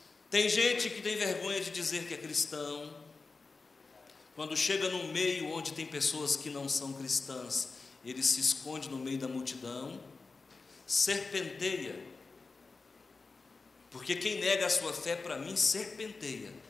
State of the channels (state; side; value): quieter; right; 4.1 dB